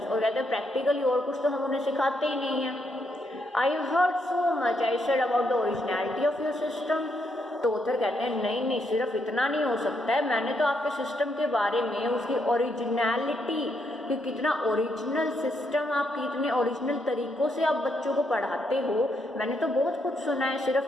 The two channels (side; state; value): both; normal; correlation 0.77